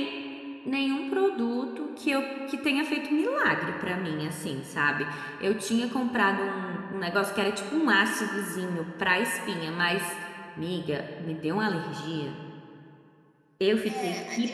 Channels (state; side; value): identical; both; correlation 1.00